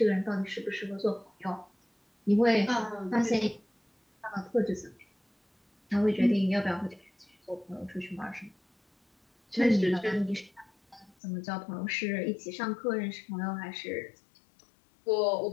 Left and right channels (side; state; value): right; drops out; at 11.2 s